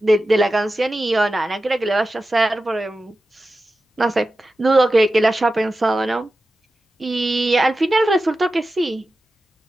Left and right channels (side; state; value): both; normal; correlation 0.93